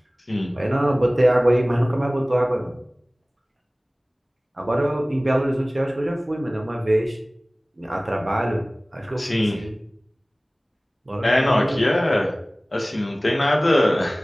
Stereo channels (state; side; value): normal; both; correlation 0.98